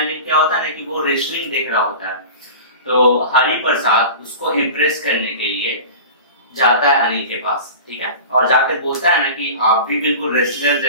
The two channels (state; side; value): inverted; both; correlation -0.34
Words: क्या होता है ना कि वो रेसलिंग देख रहा होता है। तो हरि प्रसाद उसको इम्प्रेस करने के लिए जाता है अनिल के पास, ठीक है, और जाकर बोलता है ना कि आप भी बिल्कुल रेसलर